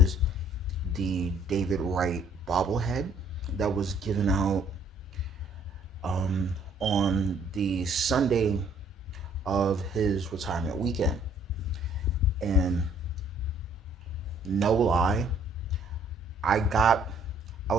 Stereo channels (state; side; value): normal; both; correlation 0.60